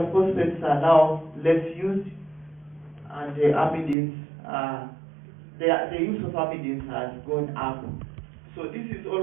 are now less used, and the amidins, the use of amidins has gone up. So this is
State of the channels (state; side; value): drops out; left; at 4.0 s